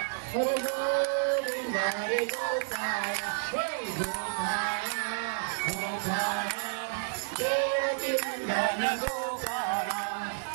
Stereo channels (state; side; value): silent; left; digital silence